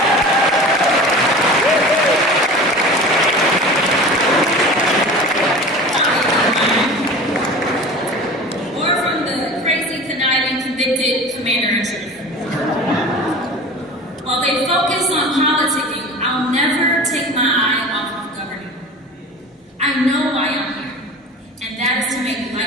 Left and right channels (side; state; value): both; normal; correlation 0.37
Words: commander-in-chief. While they focus on politicking, I'll never take my eye off of governing. I know why I'm here, and that is to make